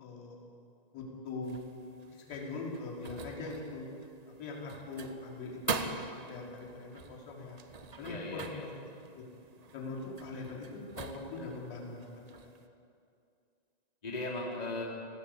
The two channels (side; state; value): right; late; 1.8 ms